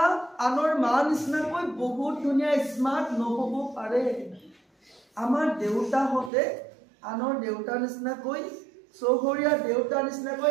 আনৰ মা নিচিনাকৈ বহুত ধুনীয়া স্মাৰ্ট নহ'ব পাৰে, আমাৰ দেউতাহঁতে আনৰ দেউতাৰ নিচিনাকৈ, চহৰীয়া দেউতাৰ নিচিনাকৈ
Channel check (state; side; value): drops out; left; at 6.3 s